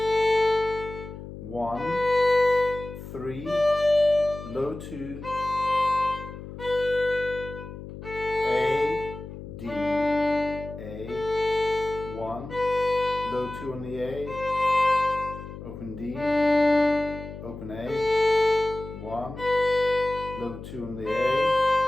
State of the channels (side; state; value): left; noise; hum, 12 dB below the sound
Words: 1, 3, low 2, A, D, A, 1, low 2 on the A, open D, open A, 1, low 2 on the A,